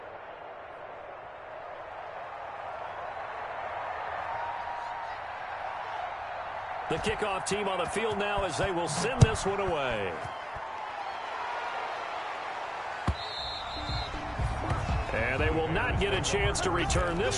The kickoff team on the field now as they will send this one away. And they will not get a chance to return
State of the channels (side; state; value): both; identical; correlation 1.00